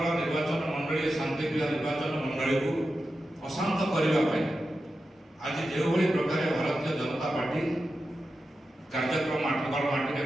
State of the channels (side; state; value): both; normal; correlation 0.91